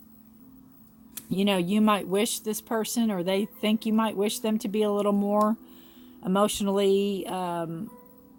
You might wish this person, or they think you might wish them to be a little more emotionally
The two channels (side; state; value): both; identical; correlation 1.00